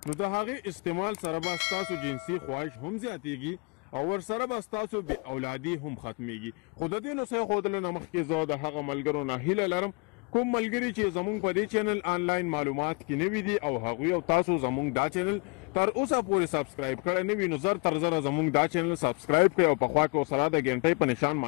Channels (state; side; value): quieter; right; 32.7 dB